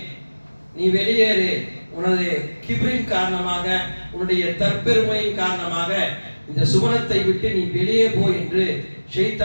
நீ வெளியேறு. உனது கிப்ரின் காரணமாக, உன்னுடைய தற்பெருமையின் காரணமாக இந்த சுவனத்தை விட்டு நீ வெளியே போ என்று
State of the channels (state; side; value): inverted; both; correlation -1.00